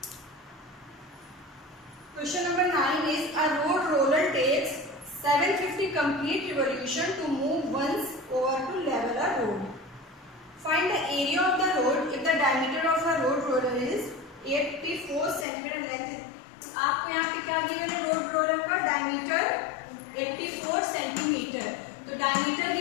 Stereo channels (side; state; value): right; drops out; at 15.5 s